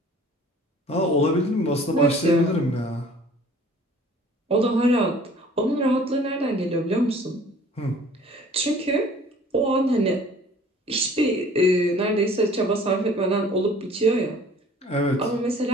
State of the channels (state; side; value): normal; both; correlation 0.51